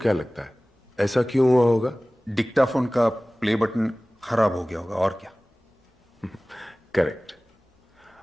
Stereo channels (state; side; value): normal; both; correlation 0.98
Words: लगता है ऐसा क्यों हुआ होगा? डिक्टाफोन का प्ले बटन खराब हो गया होगा, और क्या। करेक्ट।